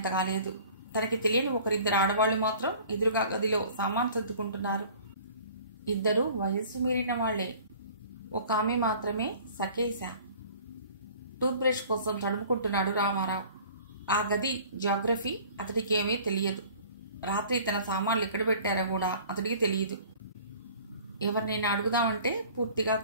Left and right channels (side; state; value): both; inverted; correlation -0.48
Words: లేదు. తనకి తెలియని 1-2 ఆడవాళ్లు మాత్రం ఎదురుగా గదిలో సామాన్ సర్దుకుంటున్నారు. 2 వయస్సు మీరిన వాళ్లే. ఒక ఆమె మాత్రమే సకేశ. టూత్ బ్రష్ కోసం తడుముకుంటున్నాడు రామారావు. ఆ గది జియోగ్రఫీ అతడికి ఏమీ తెలియదు. రాత్రి తన సామాన్లు ఎక్కడ పెట్టారో కూడా అతడికి తెలియదు. ఎవరినైనా అడుగుదామంటే పూర్తిగా